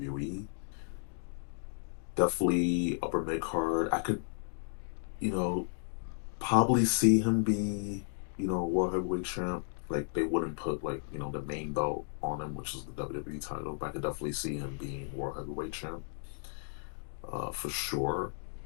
definitely upper mid card. I could, you know, probably see him be, world heavyweight champ. Like they wouldn't put like, the main belt on him, which is the WWE title, but I could definitely see him being world heavyweight champ. For sure.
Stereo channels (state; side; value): silent; right; digital silence